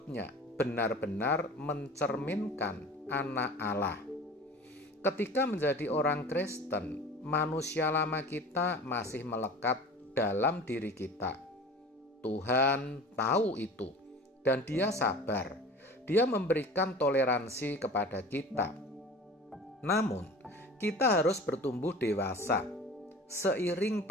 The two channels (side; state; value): both; normal; correlation 0.39